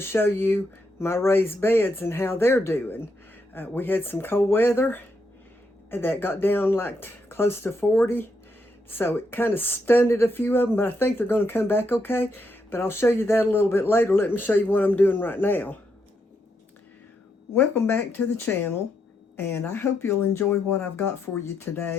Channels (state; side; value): normal; both; correlation 0.79